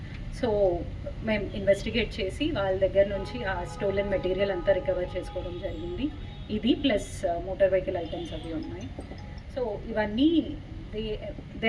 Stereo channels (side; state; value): both; identical; correlation 1.00